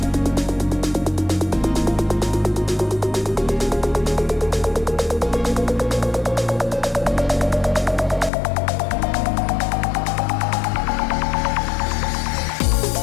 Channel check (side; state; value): right; drops out; at 8.3 s